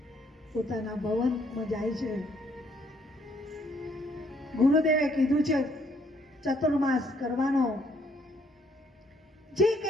પોતાના ભવનમાં જાય છે. ગુરુદેવે કીધું છે ચતુર્માસ કરવાનો. જે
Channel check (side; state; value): both; normal; correlation 0.67